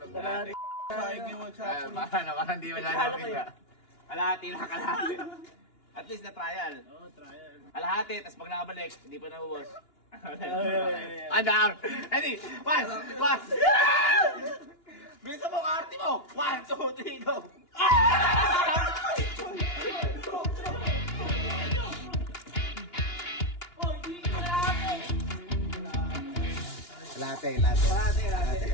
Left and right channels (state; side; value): late; right; 2.9 ms